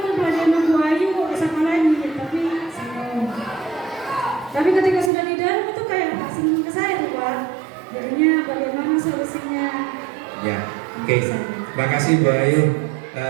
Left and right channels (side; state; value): left; drops out; at 5.1 s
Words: mau belajar sama Ayu kok sama lagi? Tapi senang. Tapi ketika sudah di dalam itu kayak tak senang ke saya tuh Pak. Jadinya bagaimana solusinya? ya, oke. Terima kasih Bu Ayu.